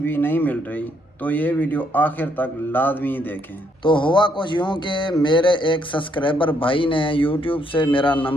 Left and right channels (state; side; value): normal; both; correlation 0.72